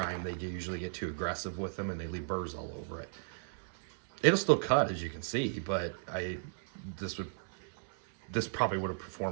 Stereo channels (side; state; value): left; silent; 54 dB below the other